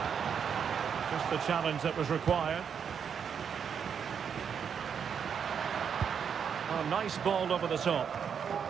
Just the challenge that was required. Oh, nice ball over the top.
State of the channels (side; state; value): left; quieter; 7.3 dB